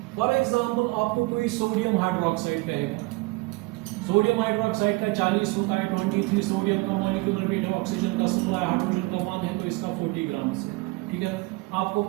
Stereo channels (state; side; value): quieter; left; 23.8 dB